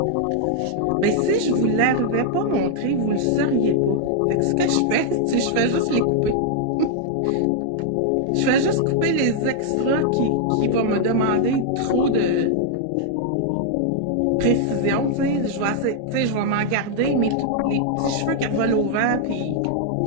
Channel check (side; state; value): both; different; correlation -0.01